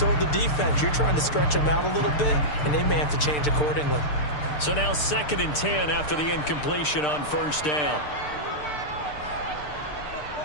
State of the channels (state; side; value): late; right; 6.7 ms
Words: the defense you're trying to stretch them out a little bit, and they may have to change accordingly. So now second and 10 after the incompletion on first down.